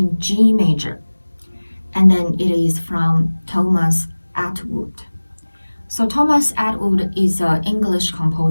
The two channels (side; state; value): both; inverted; correlation -1.00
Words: G major. And then it is from Thomas Attwood. So Thomas Attwood is an English